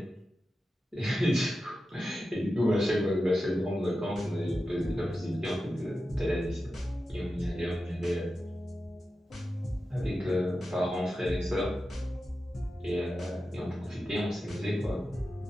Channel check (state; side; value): normal; both; correlation 0.92